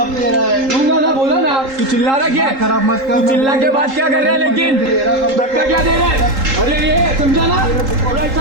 दे रहा है? दूंगा ना, बोला ना। तू चिल्ला रहा क्या? खराब मत कर। तू चिल्ला के बाद क्या कर रहा है? लेकिन धक्का क्या दे रहा है? अरे ये समझा ना, और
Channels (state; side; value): late; left; 3.8 ms